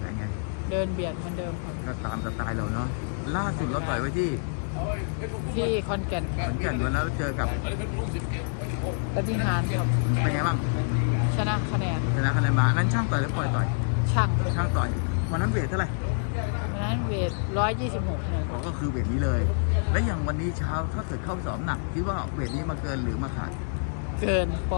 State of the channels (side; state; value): right; silent; digital silence